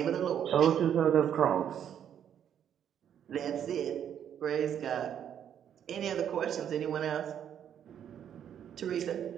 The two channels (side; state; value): left; quieter; 9.3 dB